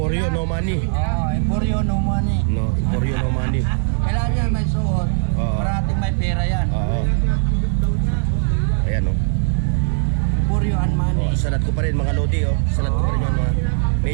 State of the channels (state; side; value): silent; left; digital silence